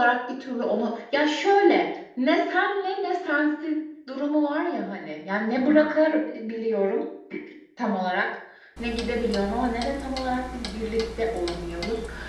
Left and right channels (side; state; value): both; identical; correlation 1.00